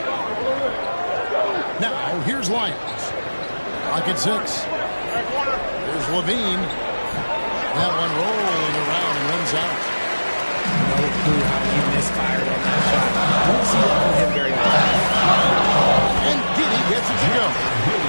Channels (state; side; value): inverted; both; correlation -1.00